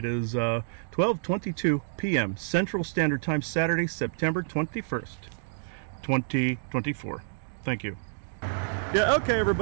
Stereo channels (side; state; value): left; silent; digital silence